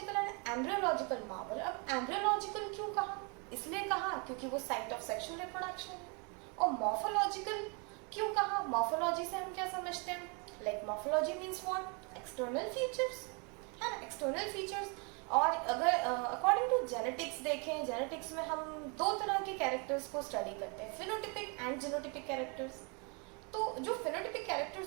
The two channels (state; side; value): quieter; left; 33.9 dB